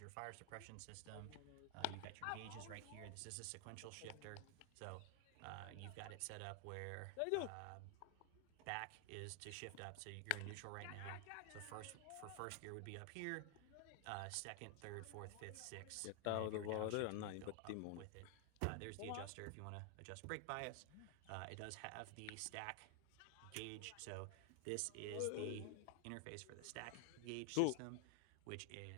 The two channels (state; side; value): different; both; correlation 0.00